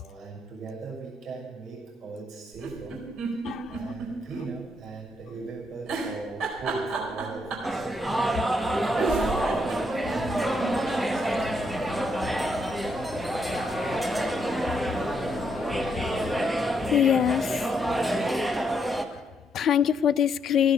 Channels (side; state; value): both; normal; correlation 0.75